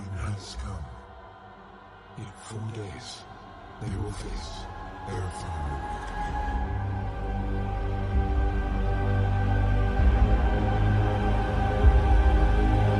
has come. In 4 days, they will face their final awakening.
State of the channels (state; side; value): identical; both; correlation 1.00